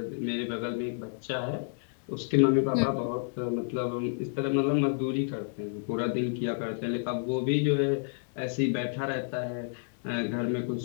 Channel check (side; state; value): right; silent; digital silence